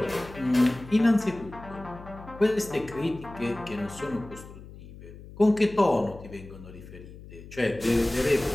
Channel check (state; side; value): noise; left; hum, 16 dB below the sound